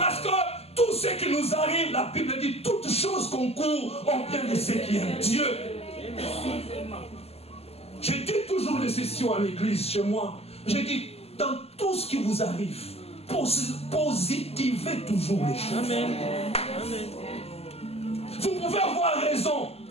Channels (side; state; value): right; late; 0.29 ms